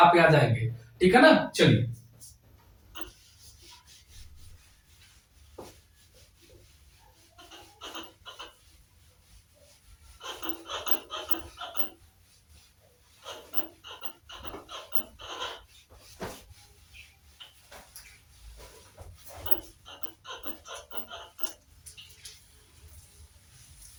आ जाएंगे, ठीक है ना। चलिए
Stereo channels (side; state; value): both; identical; correlation 1.00